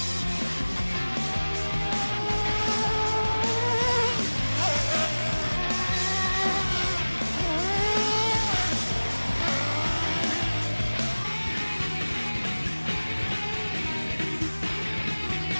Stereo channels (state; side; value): inverted; both; correlation -1.00